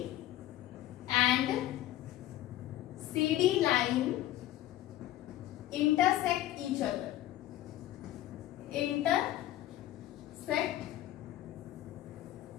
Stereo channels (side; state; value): right; quieter; 14.1 dB